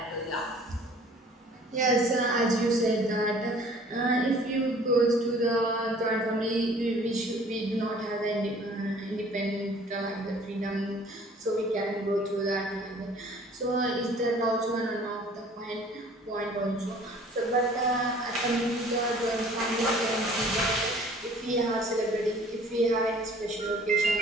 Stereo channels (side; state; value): both; normal; correlation 0.52